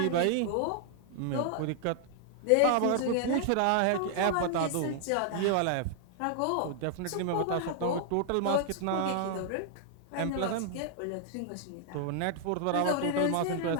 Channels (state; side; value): different; both; correlation 0.00